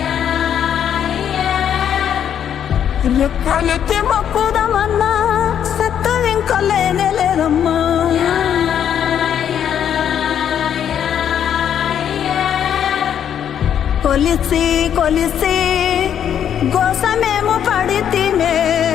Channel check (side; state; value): right; quieter; 9.2 dB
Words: రెక్కలెత్తి మొక్కుదమన్నా సత్తు ఇంకా లేనే లేదమ్మా. కొలిసి కొలిసి గోసమేమో పడితేనే